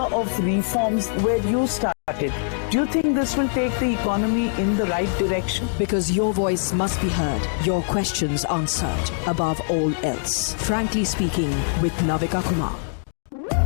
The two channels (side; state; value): right; silent; digital silence